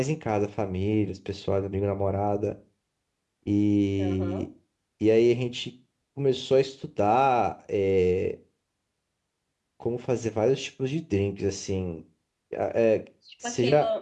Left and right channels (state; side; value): identical; both; correlation 1.00